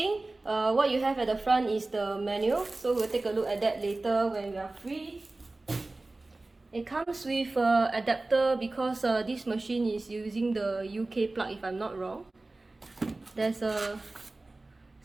What you have at the front is the manual, so we'll take a look at that later when we are free. It comes with an adapter because this machine is using the UK plug if I'm not wrong. There's a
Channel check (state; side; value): quieter; left; 3.1 dB